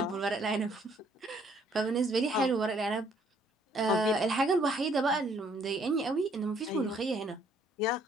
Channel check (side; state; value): both; normal; correlation 0.65